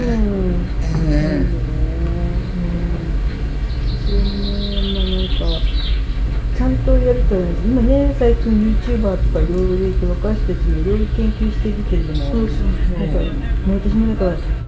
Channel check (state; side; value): identical; both; correlation 1.00